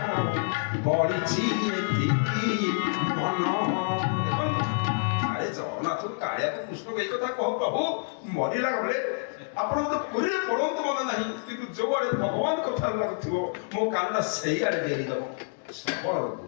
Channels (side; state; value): right; silent; digital silence